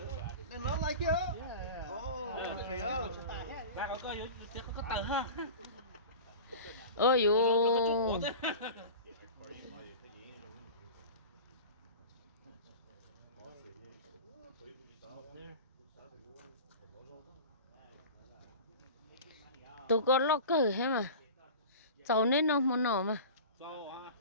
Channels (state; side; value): inverted; both; correlation -0.34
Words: And not like you. Oh, okay. Lại có tờ ha. Ôi dồi. Tụi con lo cờ hết mà. Cháu nên nó muốn nổ mà.